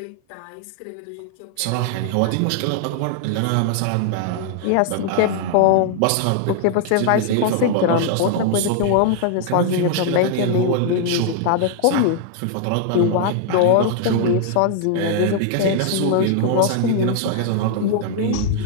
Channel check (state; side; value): different; both; correlation -0.01